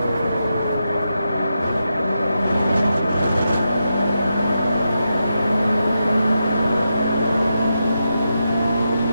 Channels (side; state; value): both; inverted; correlation -0.87